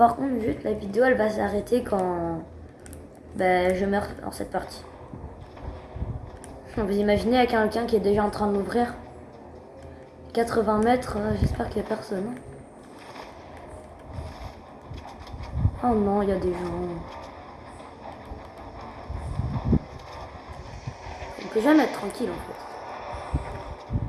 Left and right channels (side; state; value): both; identical; correlation 1.00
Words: contre, juste la vidéo, elle va s'arrêter quand je meurs dans cette partie. Vous imaginez avec quelqu'un qui est déjà en train de m'ouvrir 80 mètres, j'espère qu'il n'y a personne. Oh non, il y a des gens. On peut jamais être tranquille en fait.